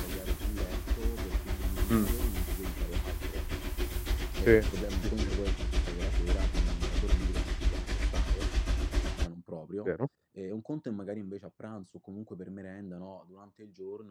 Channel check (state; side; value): identical; both; correlation 1.00